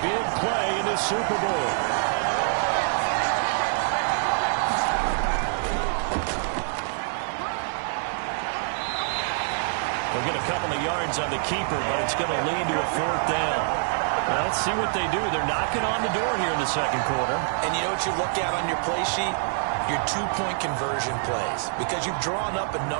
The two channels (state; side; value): silent; left; 61 dB below the other